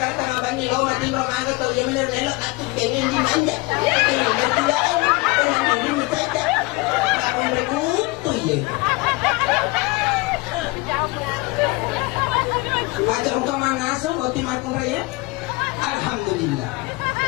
tanga bani lo matin ro mangga to yang menir nelo atu pengen di manja. Ini berdua pengen di saja. Makin rekut tu ye. Macam kemana so boti makun raya? Alhamdulillah.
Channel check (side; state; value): right; quieter; 23.7 dB